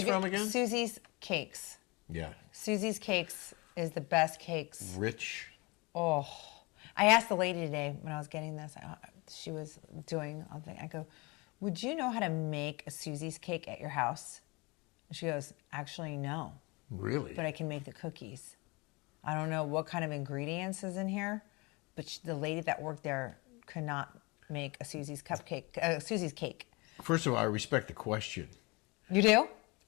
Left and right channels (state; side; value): quieter; right; 26.6 dB